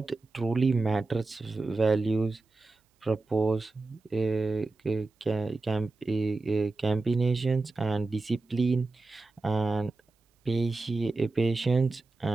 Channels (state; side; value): quieter; left; 3.3 dB